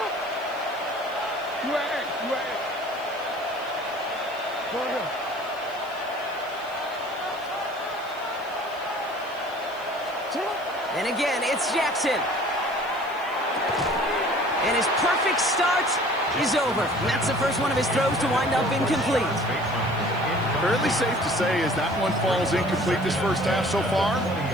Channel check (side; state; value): right; noise; hiss, 25 dB below the sound